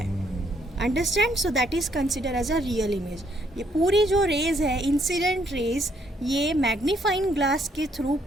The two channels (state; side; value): normal; both; correlation 0.70